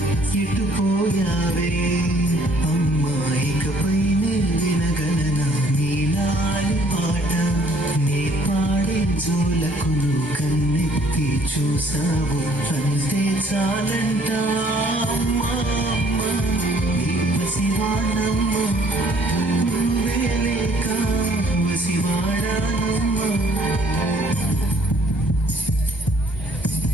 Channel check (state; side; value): normal; both; correlation 0.61